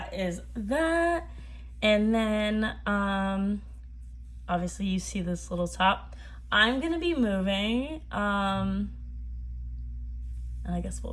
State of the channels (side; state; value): both; identical; correlation 1.00